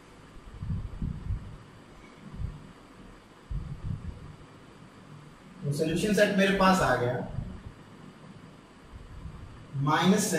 तो सोल्यूशन सेट मेरे पास आ गया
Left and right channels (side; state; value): both; identical; correlation 1.00